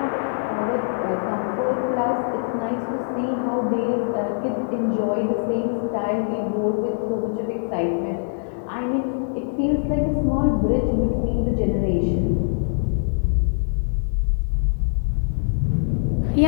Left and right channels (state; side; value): silent; right; digital silence